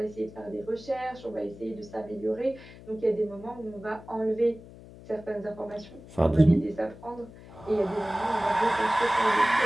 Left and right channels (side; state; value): left; noise; hum, 18 dB below the sound